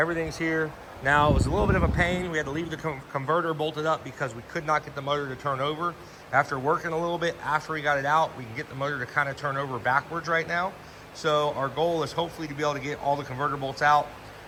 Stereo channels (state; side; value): identical; both; correlation 1.00